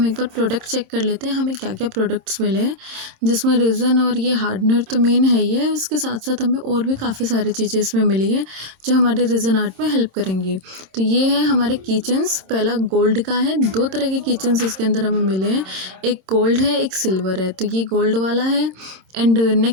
एक बार प्रोडक्ट चेक कर लेते हैं, हमें क्या क्या प्रोडक्ट्स मिले हैं। जिसमें रेज़न और ये हार्डनर तो मेन है ही है, उसके साथ साथ हमें और भी काफ़ी सारी चीज़ें इसमें मिली हैं जो हमारे रेज़न आर्ट में हेल्प करेंगी। तो ये है हमारे किचन्स। पहला गोल्ड का है। दो तरह के किचन्स इसके अंदर हमें मिले हैं, एक गोल्ड है, एक सिल्वर है। तो ये गोल्ड वाला है। एंड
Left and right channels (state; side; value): late; left; 26 ms